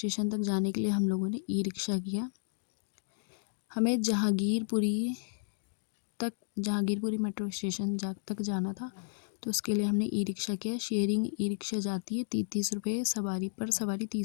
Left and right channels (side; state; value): right; silent; digital silence